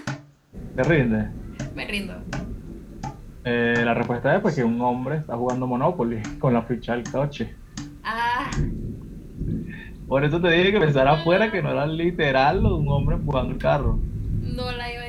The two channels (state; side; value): identical; both; correlation 1.00